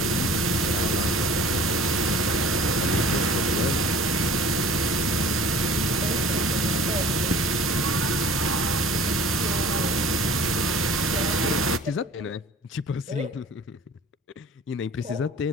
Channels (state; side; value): normal; both; correlation 0.45